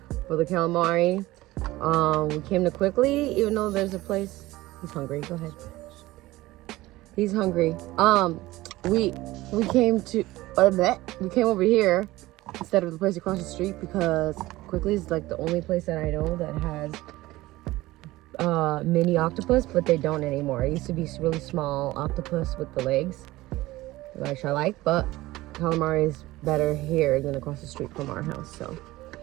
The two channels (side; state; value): left; quieter; 18.2 dB